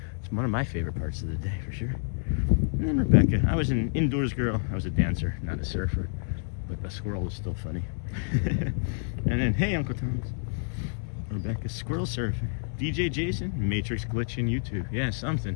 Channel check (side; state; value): right; silent; digital silence